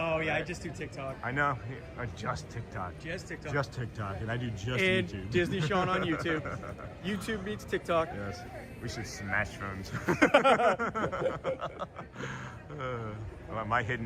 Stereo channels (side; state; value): both; identical; correlation 1.00